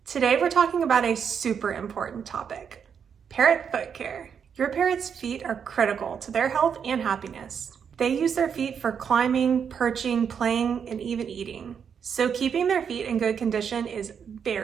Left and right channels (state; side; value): quieter; left; 7.3 dB